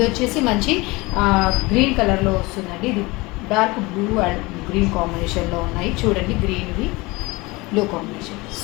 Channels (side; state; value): right; quieter; 23.4 dB